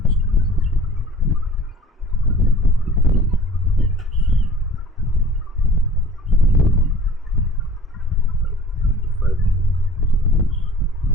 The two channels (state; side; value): normal; both; correlation 0.46